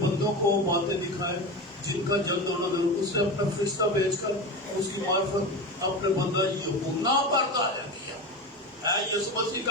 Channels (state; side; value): normal; both; correlation 0.24